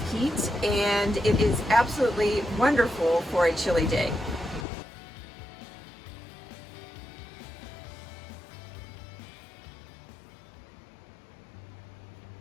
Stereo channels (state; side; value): drops out; right; at 4.7 s